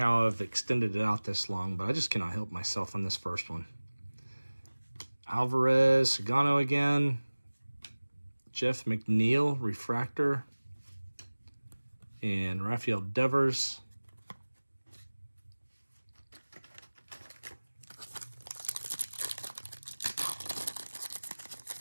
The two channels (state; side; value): inverted; both; correlation -1.00